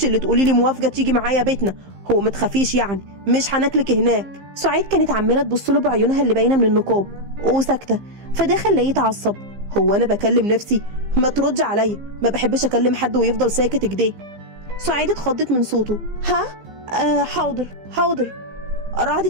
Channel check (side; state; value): left; late; 15 ms